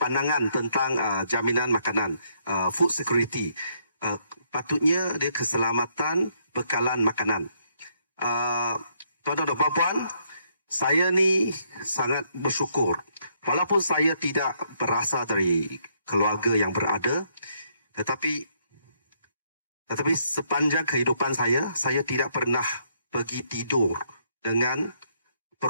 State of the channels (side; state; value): both; inverted; correlation -0.71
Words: pandangan tentang jaminan makanan, food security. Patutnya dia keselamatan bekalan makanan. Tuan-tuan dan puan-puan, saya ni sangat bersyukur. Walaupun saya tidak berasal dari keluarga yang berada, tetapi sepanjang kehidupan saya tidak pernah pergi tidur dengan